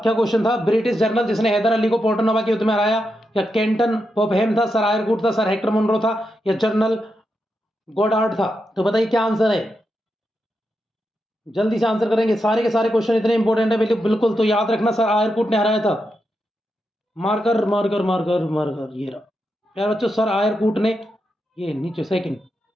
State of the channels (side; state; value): both; normal; correlation 0.86